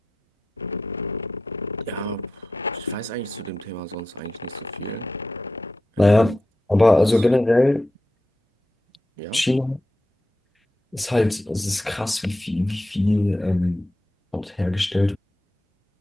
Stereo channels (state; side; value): normal; both; correlation 0.89